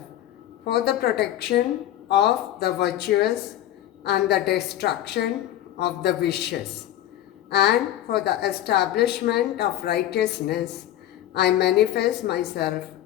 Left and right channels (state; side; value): quieter; right; 12.8 dB